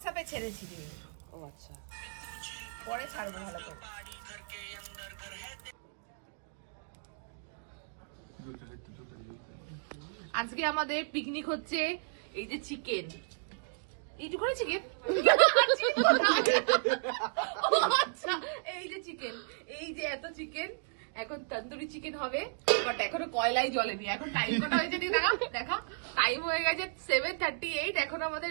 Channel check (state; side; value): silent; left; digital silence